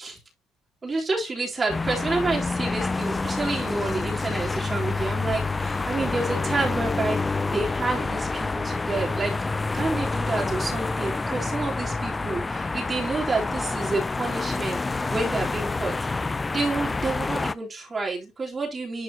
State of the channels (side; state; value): both; normal; correlation 0.90